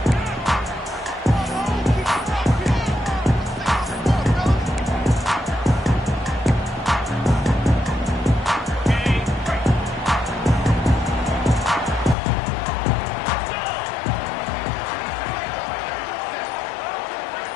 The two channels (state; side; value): drops out; right; at 12.2 s